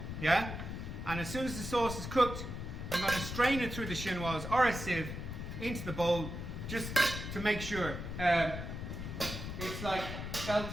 yeah? And as soon as the sauce is cooked, I'm going to strain it through the chinoise or a sieve into the bowl, just to make sure it's like felt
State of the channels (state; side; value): noise; left; rumble, 6 dB below the sound